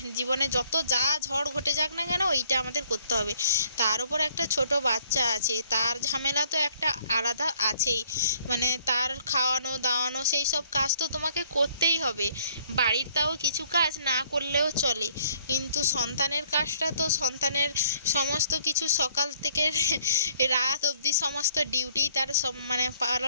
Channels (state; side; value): inverted; both; correlation -0.62